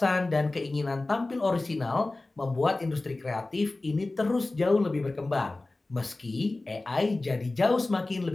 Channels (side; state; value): right; quieter; 3.0 dB